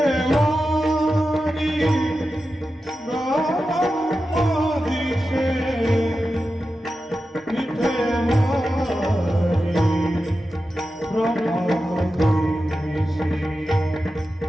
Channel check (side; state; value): both; normal; correlation 0.92